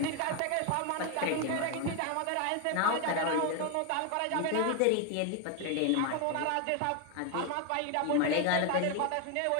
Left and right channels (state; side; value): different; both; correlation 0.01